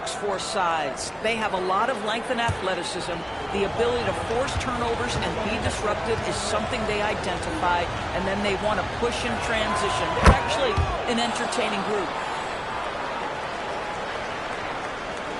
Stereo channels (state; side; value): identical; both; correlation 1.00